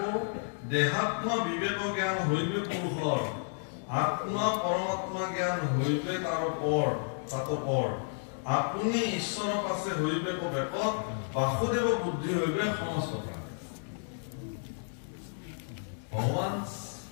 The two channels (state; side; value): silent; right; digital silence